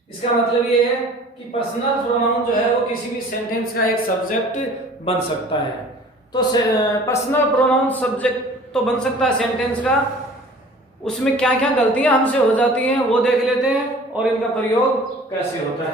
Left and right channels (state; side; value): normal; both; correlation 0.47